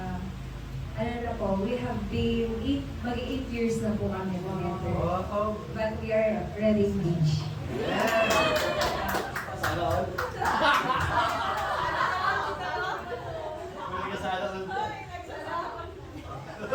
ano na po, we have been 8 years na po kami together. Wow. But we are already engaged. Sana all. May kasala all.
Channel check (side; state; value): both; identical; correlation 1.00